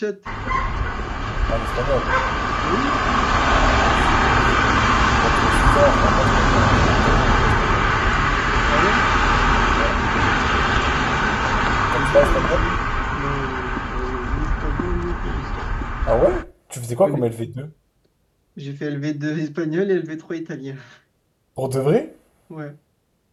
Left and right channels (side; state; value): both; identical; correlation 1.00